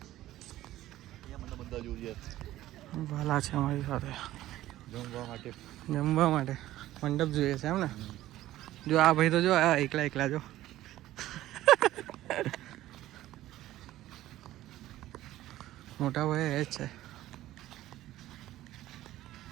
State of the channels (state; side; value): quieter; left; 14.8 dB